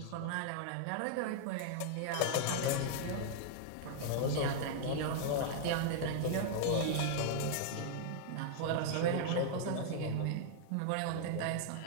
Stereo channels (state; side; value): different; both; correlation -0.01